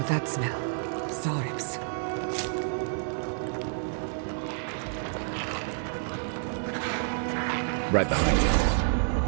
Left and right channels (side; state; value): left; silent; digital silence